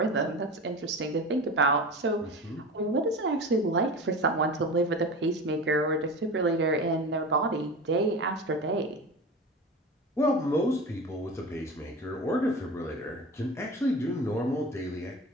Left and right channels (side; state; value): both; normal; correlation 0.31